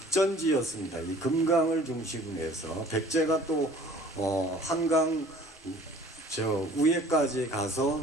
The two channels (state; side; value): normal; both; correlation 0.51